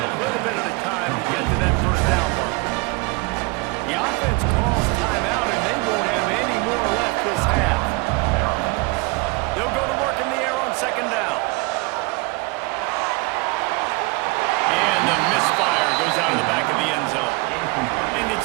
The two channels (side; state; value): left; quieter; 26.7 dB